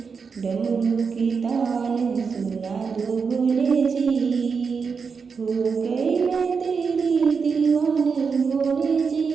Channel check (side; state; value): left; quieter; 5.5 dB